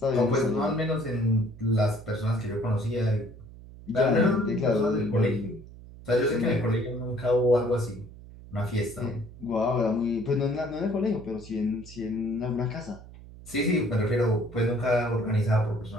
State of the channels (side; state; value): right; noise; hum, 17 dB below the sound